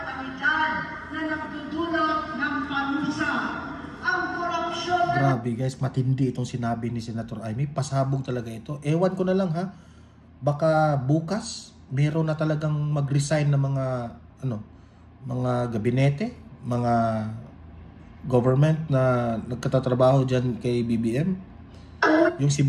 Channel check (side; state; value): both; identical; correlation 1.00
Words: na nagdudulot ng panusa, ang korupsyon na Grabe guys, matindi itong sinabi ni Senator Amy. Pasabog talaga ito. Ewan ko na lang ha. Baka bukas meron na talagang mag-resign ng mga gabinete, mga government na nagkatatrabaho dyan kay BBM. Yung si